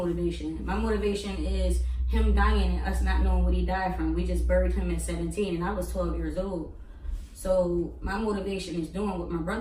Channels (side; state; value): both; identical; correlation 1.00